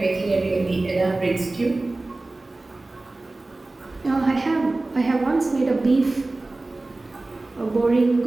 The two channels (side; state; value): left; quieter; 3.0 dB